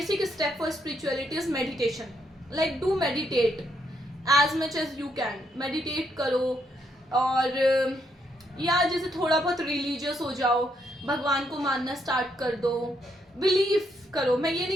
step for spirituality is meditation. Like do meditate as much as you can, meditate करो, और या जैसे थोड़ा बहुत रिलीजियस हो जाओ, भगवान को मानना स्टार्ट कर दो, बिलीव करो। मैं ये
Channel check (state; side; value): normal; both; correlation 0.76